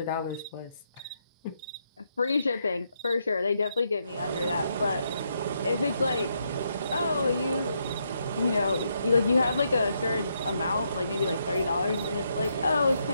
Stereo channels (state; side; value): inverted; both; correlation -0.78